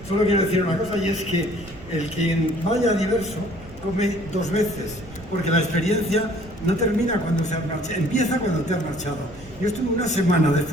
solo quiero decir una cosa, y es que el quien vaya a diverso come dos veces, porque la experiencia no termina cuando se ha marchado, empieza cuando te has marchado. Yo estuve una semana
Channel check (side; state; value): right; noise; rumble, 18 dB below the sound